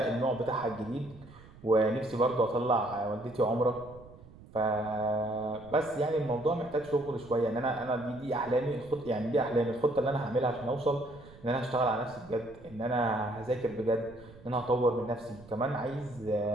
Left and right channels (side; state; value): right; noise; rumble, 21 dB below the sound